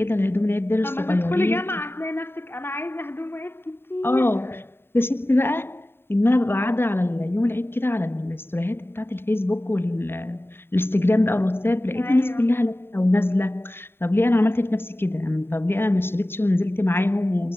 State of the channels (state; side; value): late; right; 0.11 ms